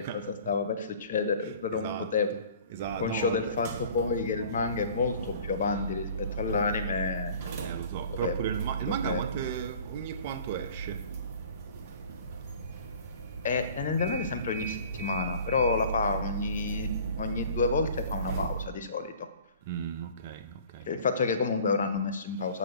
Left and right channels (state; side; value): inverted; both; correlation -0.47